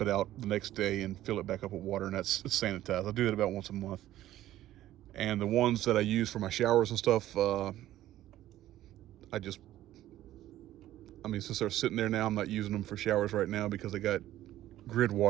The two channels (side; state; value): left; quieter; 13.9 dB